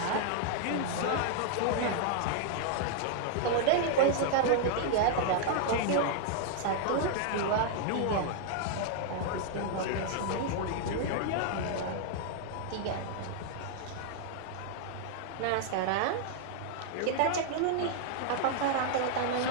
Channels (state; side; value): different; both; correlation 0.00